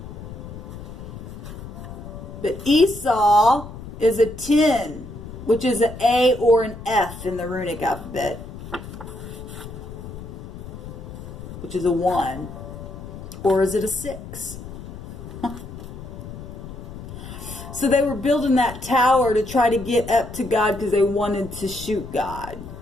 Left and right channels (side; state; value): left; noise; rumble, 12 dB below the sound